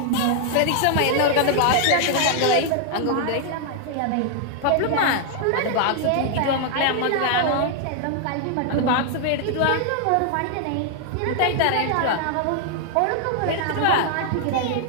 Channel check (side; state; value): both; different; correlation 0.00